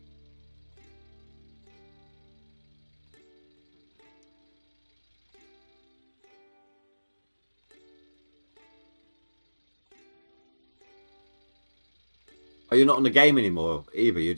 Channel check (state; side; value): inverted; both; correlation -1.00